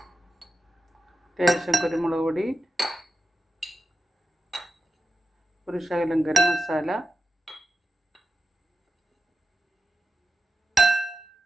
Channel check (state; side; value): normal; both; correlation 0.91